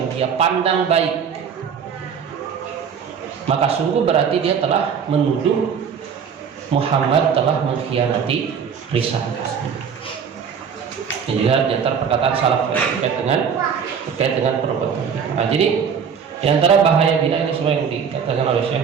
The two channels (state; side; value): quieter; left; 7.0 dB